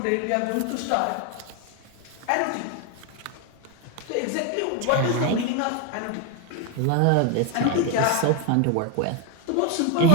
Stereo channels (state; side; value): different; both; correlation 0.01